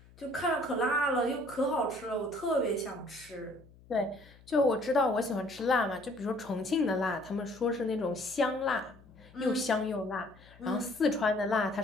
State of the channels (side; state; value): left; noise; hum, 24 dB below the sound